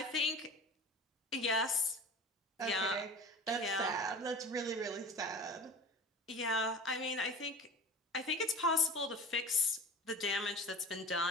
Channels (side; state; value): both; normal; correlation 0.36